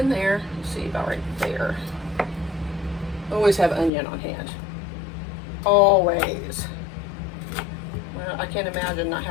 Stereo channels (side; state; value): right; drops out; at 3.9 s